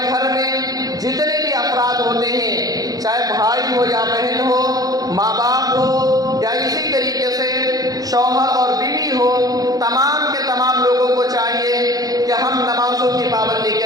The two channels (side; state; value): left; late; 0.18 ms